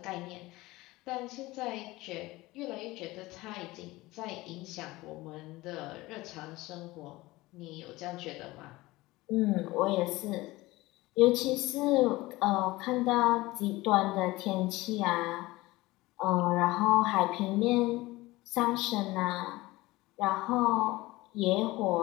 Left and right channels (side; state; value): right; quieter; 19.8 dB